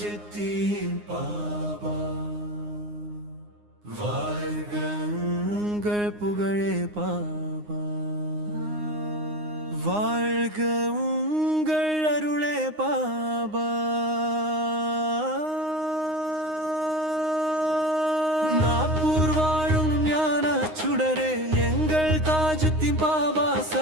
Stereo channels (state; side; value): late; left; 9.7 ms